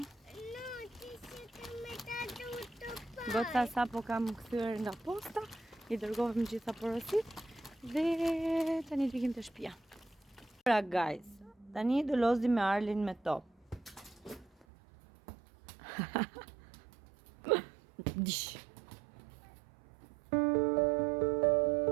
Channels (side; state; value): left; drops out; at 14.7 s